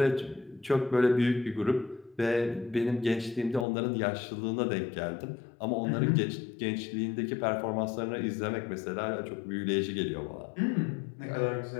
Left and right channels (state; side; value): drops out; right; at 3.7 s